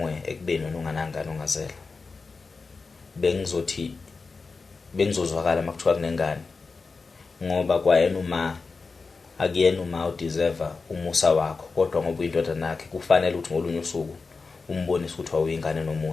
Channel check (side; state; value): right; quieter; 4.3 dB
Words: ekubeni wena unganangani ongazela. Bengizozwakala makuthiwa kunengane. Ngoba kwayena uma akuyena uma udeserve umusa wakho, kodwa ngoba uyindoda nakhe kufanele ukuthi ngolunye usuku umbonise ukuthi awuyingane